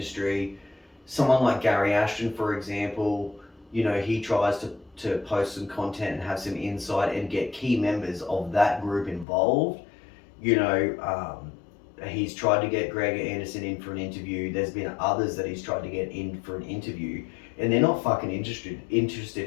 someone like Gary Ashton, for example, he tries to post some content and have some insight and get key members of that group involved. He's tried to get Greg Anderson in for an interview. There's been others that he's tried to get in for an interview, and they're not fucking interested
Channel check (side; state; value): right; drops out; at 9.2 s